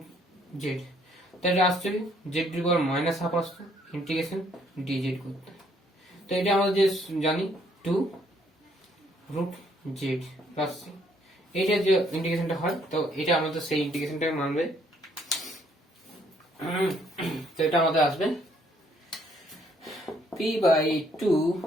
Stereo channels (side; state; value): both; normal; correlation 0.67